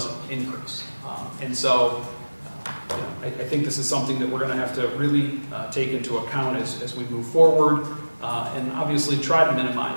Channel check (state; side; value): inverted; both; correlation -1.00